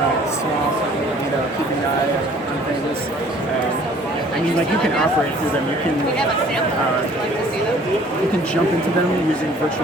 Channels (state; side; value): normal; both; correlation 0.54